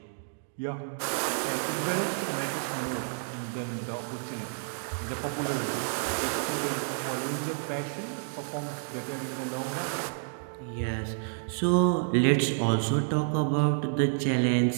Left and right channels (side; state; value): left; silent; digital silence